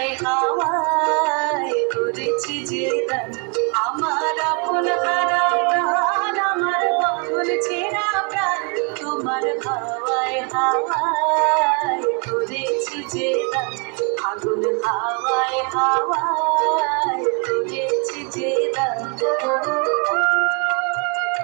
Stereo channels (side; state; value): left; quieter; 35.4 dB